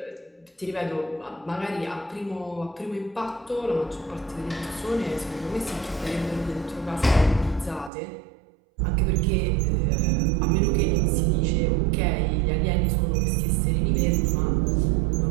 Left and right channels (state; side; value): drops out; left; at 7.9 s